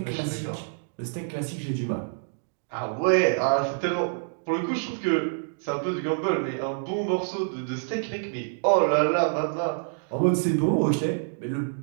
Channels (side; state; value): left; silent; digital silence